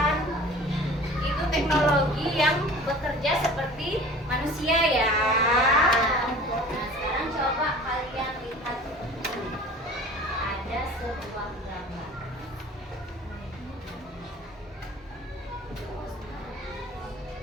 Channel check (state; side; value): normal; both; correlation 0.43